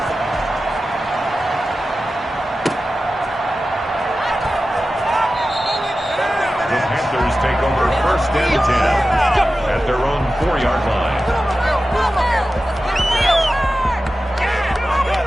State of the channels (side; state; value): both; normal; correlation 0.94